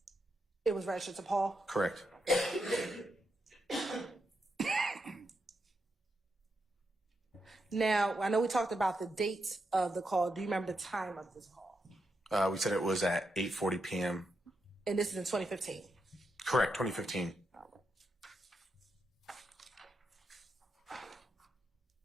It was registered to Paul? Correct. Now, I know we talked about the dates of the call. Do you remember the time of this call? We said it was at 8:40 p.m. And this is in 2015? Correct, 2015.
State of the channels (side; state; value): both; normal; correlation 0.84